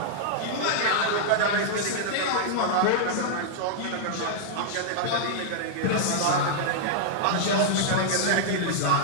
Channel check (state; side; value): different; both; correlation -0.02